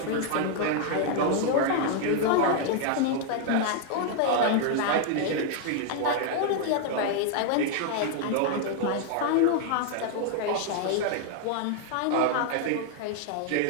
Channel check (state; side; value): different; both; correlation 0.00